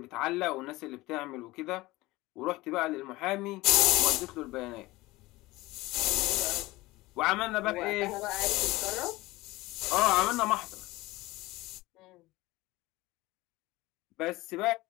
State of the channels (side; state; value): right; quieter; 19.8 dB